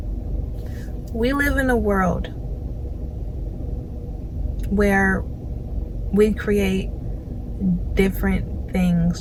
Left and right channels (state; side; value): identical; both; correlation 1.00